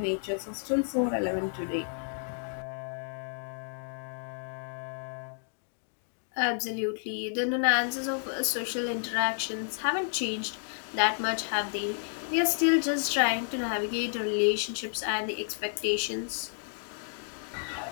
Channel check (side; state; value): right; silent; digital silence